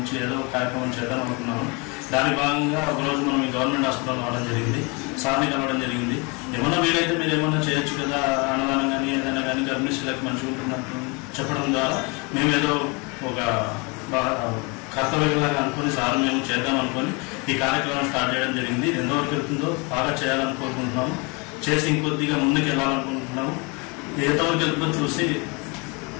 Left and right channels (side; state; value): right; quieter; 30.0 dB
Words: ఏదో కార్యక్రమం చేద్దాం అనుకున్నాము. దాని భాగంగా ఒకరోజు మనం ఈ గవర్నమెంట్ హాస్పిటల్ రావడం జరిగింది, సార్ని కలవడం జరిగింది. ఏమన్నా వీలైతే మీరు ఏమన్నా చేయొచ్చు కదా, అన్నదానం కానీ ఏదైనా కానీ గర్భిణీ స్త్రీలకు మంచిగా ఉంటున్నట్టు చెప్పడం ద్వారా మేము ఏదో ఒక కర్తవ్యంలాగా అనుకుని సార్ మేము చేద్దాం అనుకొని ఈ కార్యక్రమం స్టార్ట్ చేయడం జరిగింది. ఎంతవరకు వెళ్తుందో బాగా చేయాలని కోరుకుంటున్నాము. చేసి ఇంకొద్దిగా ముందుకు వెళ్ళాలనుకుంటున్నాము. ఎంతవరకు వెళ్తుందో చూసి